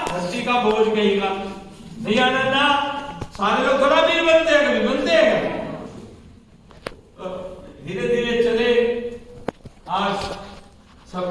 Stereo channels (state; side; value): identical; both; correlation 1.00